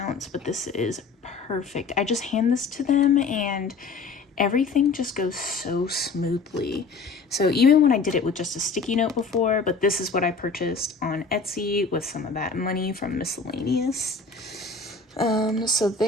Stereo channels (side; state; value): right; quieter; 4.4 dB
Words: But this is perfect. I just hand this to them and everything just goes so smoothly. So even when I did it with just a sticky note before, but this is what I purchased on Etsy with some of that money from miscellaneous. So